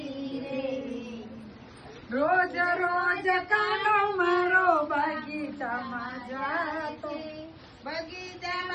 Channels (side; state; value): both; identical; correlation 1.00